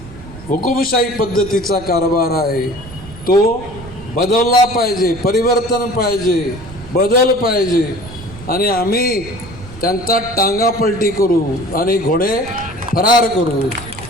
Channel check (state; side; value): noise; right; rumble, 16 dB below the sound